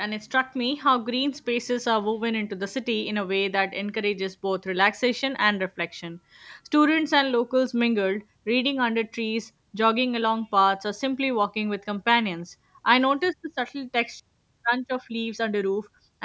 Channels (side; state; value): both; identical; correlation 1.00